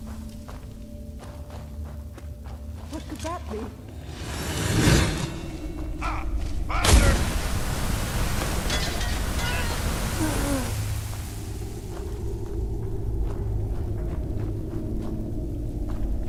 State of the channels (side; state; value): both; identical; correlation 1.00